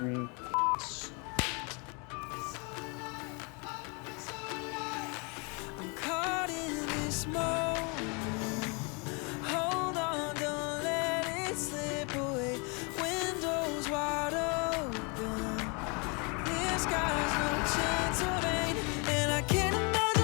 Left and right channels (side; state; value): right; quieter; 32.5 dB